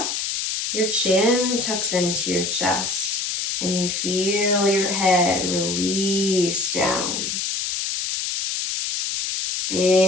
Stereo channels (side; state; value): left; noise; hiss, 2 dB below the sound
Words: your chin tucks into your chest and you feel your head release down.